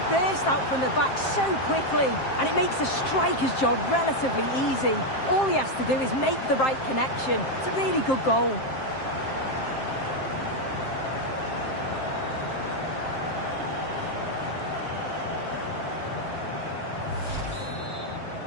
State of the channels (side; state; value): right; late; 7.6 ms